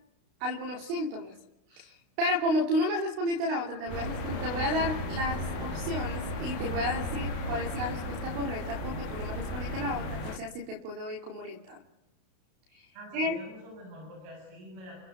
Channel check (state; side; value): late; left; 32 ms